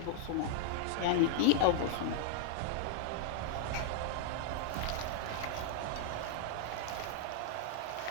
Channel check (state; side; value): different; both; correlation -0.01